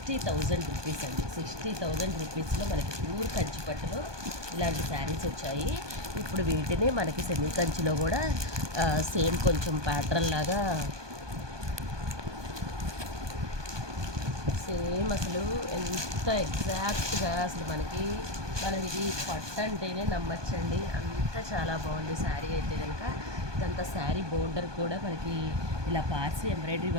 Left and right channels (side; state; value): left; late; 1.2 ms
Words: రూపీస్ అండి. 60,000 రూపీస్లో మనకి ప్యూర్ కంచి పట్టులో ఇలాంటి శారీస్ వచ్చాయి. ఇప్పుడు వీటిని మనకి సెమీ కంచిలో కూడా సేమ్ కొంచెం ప్యాటర్న్ లాగా సేమ్ అసలు ఎంత ఎగ్జాక్ట్గా అసలు మనం ఇది పట్టు అంటేనే నమ్మచ్చండి. అంత చాలా బాగుంది శారీ అయితే కనుక. ఇదంతా శారీ బోర్డర్ కూడా మనకి ఇలా పార్సీ ఎంబ్రాయిడరీ